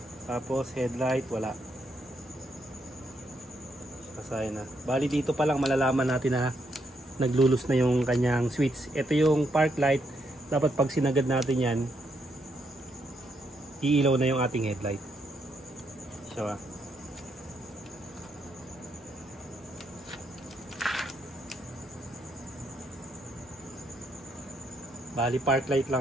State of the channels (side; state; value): both; normal; correlation 0.77